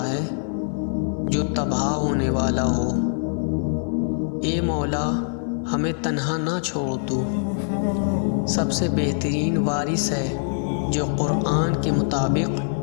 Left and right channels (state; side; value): silent; right; 60 dB below the other